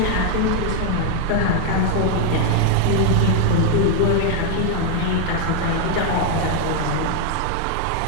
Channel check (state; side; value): different; both; correlation 0.01